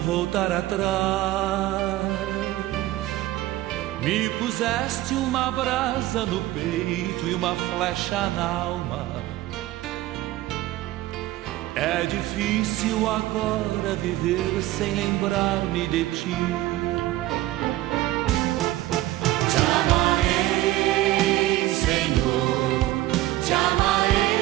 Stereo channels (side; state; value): left; quieter; 16.2 dB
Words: atrás. Me puseste uma brasa no peito e uma flecha na alma. É difícil agora viver sem lembrar-me de ti. Te amarei, Senhor, te